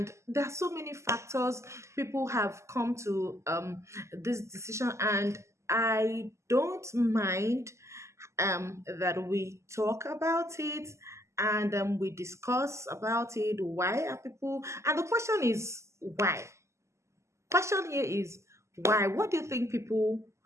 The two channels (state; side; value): late; left; 0.13 ms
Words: there are so many factors. People have come to this decision, and I don't mind that we talk about it, and we discuss about it. Why are people? And the question is why. Question here is why. What do you think people?